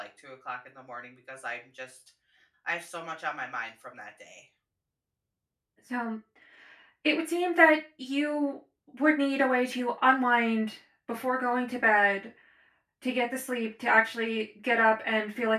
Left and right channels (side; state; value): both; identical; correlation 1.00